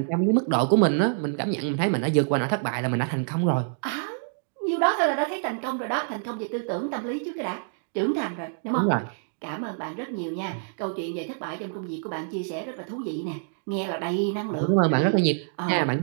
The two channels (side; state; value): left; silent; digital silence